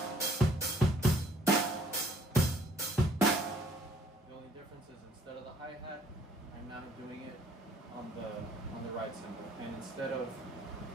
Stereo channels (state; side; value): normal; both; correlation 0.61